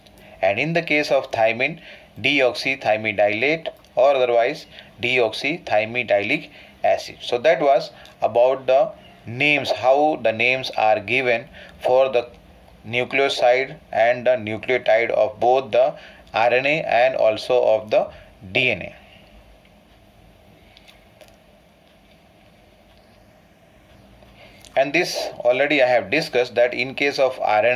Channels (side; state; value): both; identical; correlation 1.00